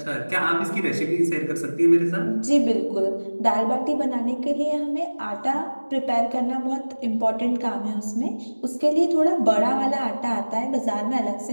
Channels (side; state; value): both; inverted; correlation -1.00